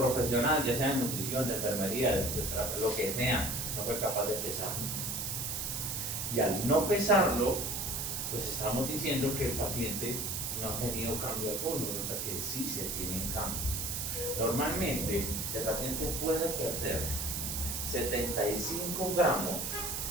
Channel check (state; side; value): noise; right; hiss, 2 dB below the sound